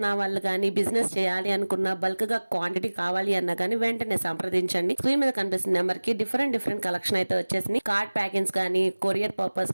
వాళ్ళు కానీ, బిజినెస్ చేయాలి అనుకున్న, బల్క్ గా క్వాంటిటీ కావాలి అన్నా కానీ వెంటనే సంప్రదించండి. స్క్రీన్ మీద కనిపిస్తున్న నెంబర్ కి డిఫరెంట్ కలెక్షన్ అయితే వచ్చేసింది. కార్డ్ ప్యాకింగ్స్ కానీ, కొరియర్ పర్పస్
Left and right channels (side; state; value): both; inverted; correlation -1.00